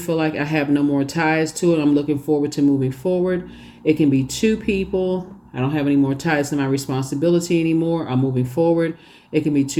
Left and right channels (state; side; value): identical; both; correlation 1.00